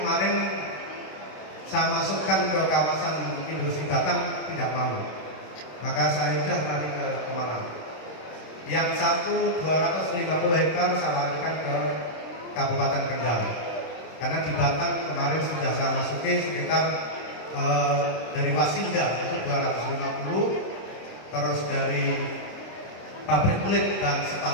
saya masukkan ke kawasan industri Batam tidak mau, maka saya sudah lari ke Pemalang. Yang 250 hektar saya larikan ke Kabupaten Kendal. Karena di Batam kemarin sudah saya masuki sekitar dari Wasinda itu 250, terus dari pabrik kulit dan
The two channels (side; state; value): right; late; 26 ms